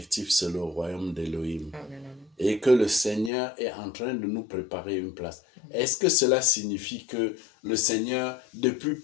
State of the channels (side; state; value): right; drops out; at 3.3 s